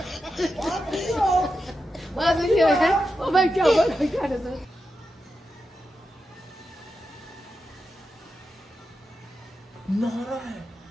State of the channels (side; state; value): both; normal; correlation 0.88